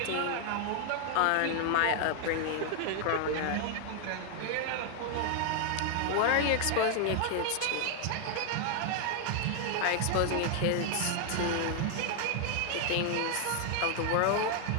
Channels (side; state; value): both; different; correlation 0.00